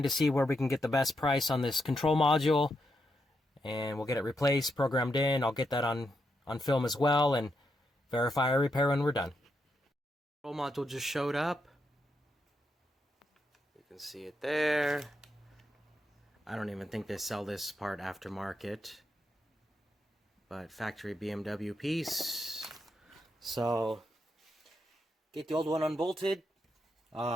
to see where we can get the best price on this control module, and we'll get it replaced, programmed in. I'll get that on film as well and verify our repair when we're done. Control module just showed up. You can see it there. I don't even think they sell this part aftermarket, but factory BMW piece. So get the old one unbolted.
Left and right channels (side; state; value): both; normal; correlation 0.82